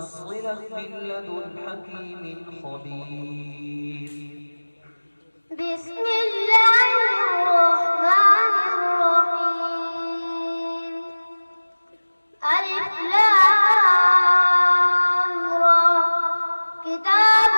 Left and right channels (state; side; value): inverted; both; correlation -1.00